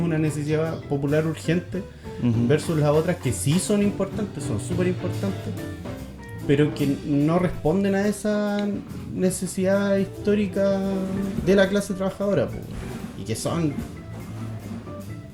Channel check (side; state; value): both; identical; correlation 1.00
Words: una necesidad popular urgente, versus las otras que sí son importantes, son súper importantes, pero que no responden a esa necesidad histórica de la clase trabajadora, po, y que son,